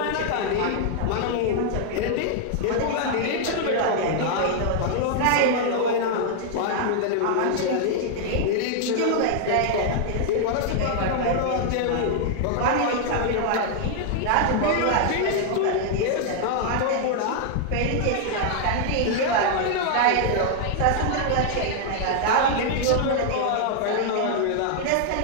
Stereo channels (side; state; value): both; different; correlation 0.00